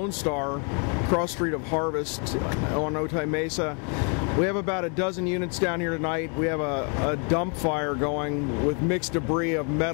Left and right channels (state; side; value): quieter; right; 38.2 dB